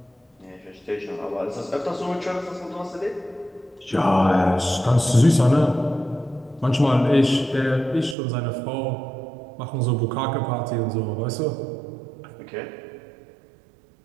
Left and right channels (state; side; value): drops out; left; at 8.2 s